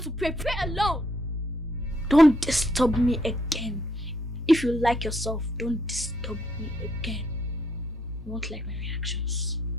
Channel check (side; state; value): both; normal; correlation 0.72